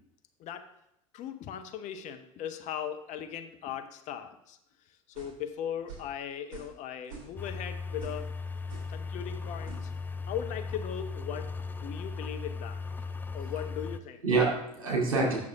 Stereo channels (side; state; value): both; normal; correlation 0.37